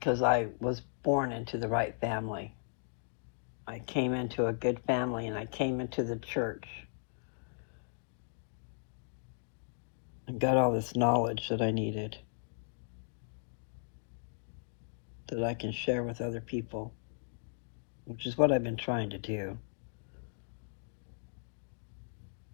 I was born into the right family. I came into a good family and I came into the church and got all this knowledge that I needed that I can share with other people, which is what I've been trying to do.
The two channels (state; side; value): silent; right; digital silence